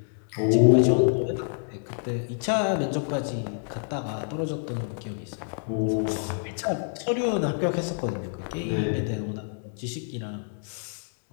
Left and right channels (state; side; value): silent; right; digital silence